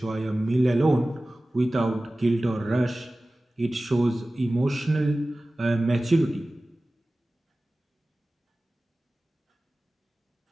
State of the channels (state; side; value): normal; both; correlation 0.97